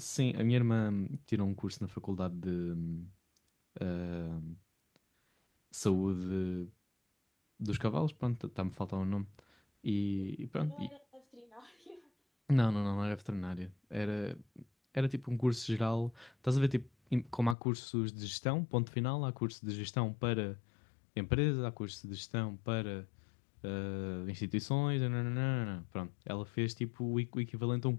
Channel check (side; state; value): right; drops out; at 17.6 s